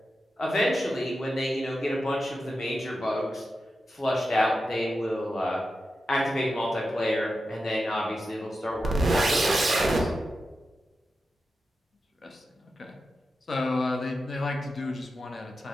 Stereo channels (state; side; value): normal; both; correlation 0.90